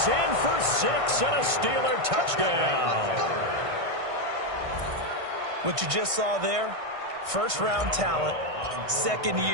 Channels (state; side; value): late; left; 1.6 ms